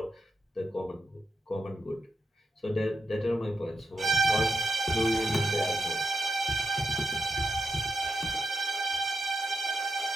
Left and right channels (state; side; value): normal; both; correlation 0.86